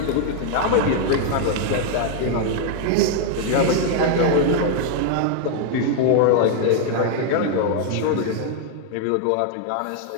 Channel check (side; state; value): both; different; correlation 0.00